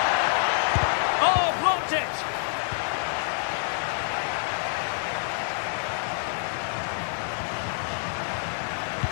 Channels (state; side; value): silent; right; 60 dB below the other